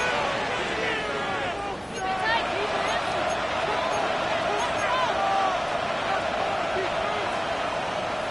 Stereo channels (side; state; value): both; identical; correlation 1.00